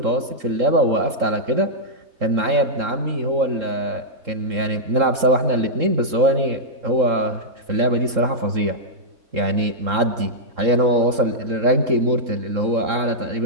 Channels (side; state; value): left; late; 3.7 ms